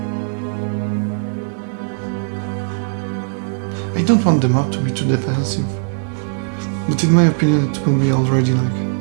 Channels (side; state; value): left; silent; digital silence